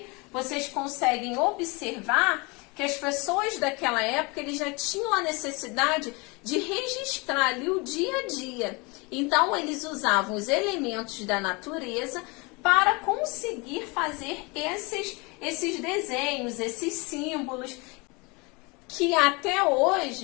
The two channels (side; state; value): right; quieter; 27.8 dB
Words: vocês conseguem observar que as pessoas daquela época eles já tinham a necessidade de registrar ali o dia a dia. Então eles usavam os elementos da natureza para conseguir fazer esses desenhos, esses símbolos, que até